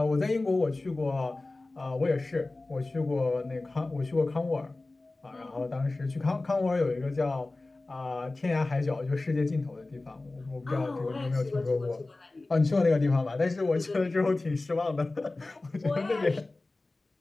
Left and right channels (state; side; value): quieter; right; 3.1 dB